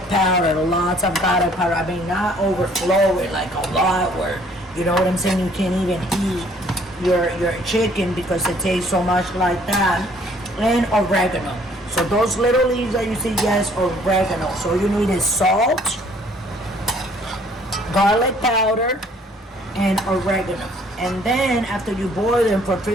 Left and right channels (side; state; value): both; normal; correlation 0.60